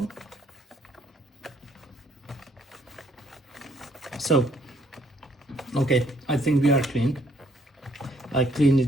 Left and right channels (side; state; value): both; normal; correlation 0.66